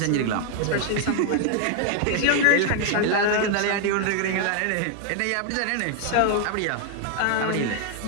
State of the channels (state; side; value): different; both; correlation 0.00